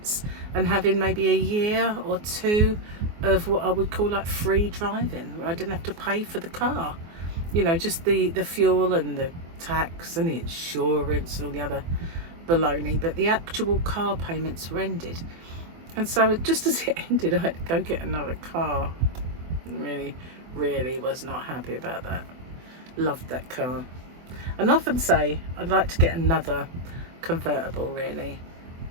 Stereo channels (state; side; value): late; left; 24 ms